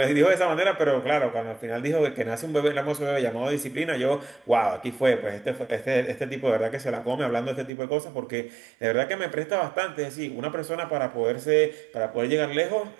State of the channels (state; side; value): drops out; left; at 7.7 s